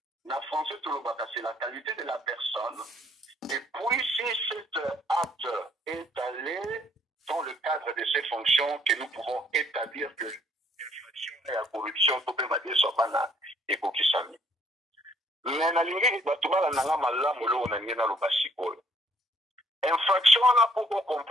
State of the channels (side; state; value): both; normal; correlation 0.64